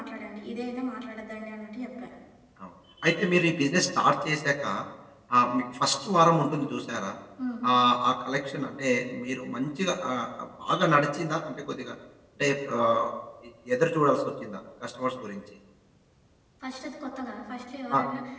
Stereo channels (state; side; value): identical; both; correlation 1.00